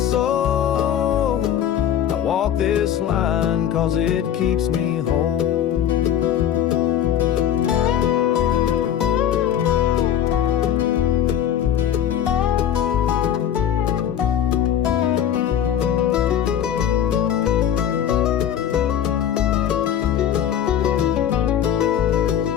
I walk this line 'cause it keeps me whole.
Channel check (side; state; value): right; quieter; 9.8 dB